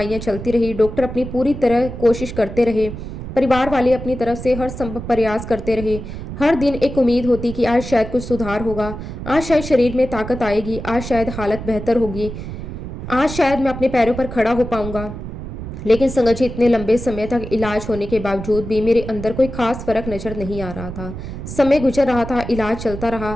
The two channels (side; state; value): right; noise; rumble, 9 dB below the sound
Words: चलती रही, डॉक्टर अपनी पूरी तरह कोशिश करते रहे, परिवार वाले अपनी तरफ से हर संभव प्रयास करते रहे। हर दिन एक उम्मीद होती कि आज शायद कुछ सुधार होगा, आज शायद शरीर में ताकत आएगी, आज शायद हालत बेहतर होगी, आज शायद मैं अपने पैरों पर खड़ा हो पाऊंगा। लेकिन संगत जी, इतने लंबे समय तक इलाज होने के बावजूद भी मेरे अंदर कोई खास फर्क नजर नहीं आ रहा था। समय गुजर रहा था, इलाज चलता रहा,